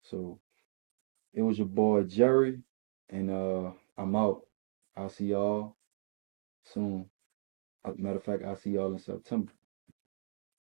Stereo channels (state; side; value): silent; left; digital silence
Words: So it was your boy Jerry. And I'm out. I'll see y'all soon. Matter of fact, I'll see y'all in September.